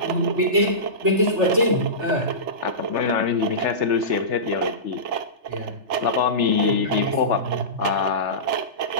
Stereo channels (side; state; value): left; late; 3.3 ms